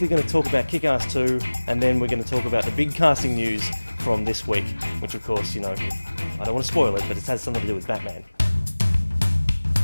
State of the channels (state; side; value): inverted; both; correlation -1.00